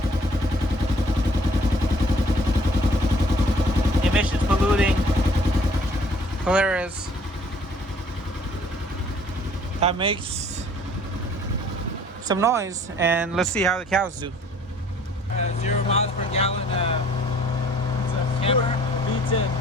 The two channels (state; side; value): normal; both; correlation 0.57